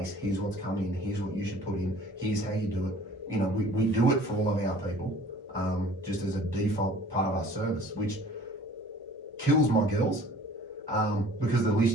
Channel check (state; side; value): normal; both; correlation 0.49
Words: here's what's come in, here's what you should put in, here's how you do it. You know, we do it for all of our people, just as a default part of our service, which kills my girls because the